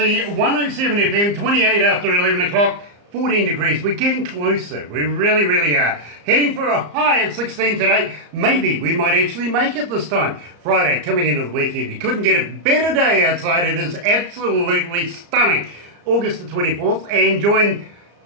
107 FM, 28 after 11 o'clock, 14 degrees. We're getting closer, we really, really are. Heading for a high of 16 today. Maybe we might actually make it this time. Friday, coming into the weekend. You couldn't get a better day outside. It is absolutely stunning. August the 24th, and join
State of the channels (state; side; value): late; left; 34 ms